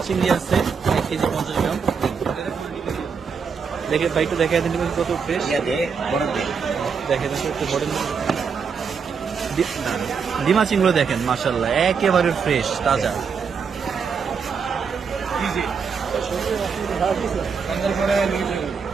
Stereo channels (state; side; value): quieter; left; 6.0 dB